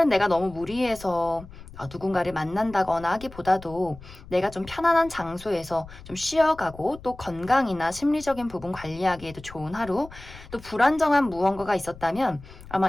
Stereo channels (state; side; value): noise; left; rumble, 18 dB below the sound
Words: 내가 너무 무리해서 누군가를 만난다거나 하기보다도 내가 좀 편안한 장소에서 좀 쉬어가고 또 건강이나 심리적인 부분 관리하기에도 좋은 하루, 또 불안정한 무언가가 있었다면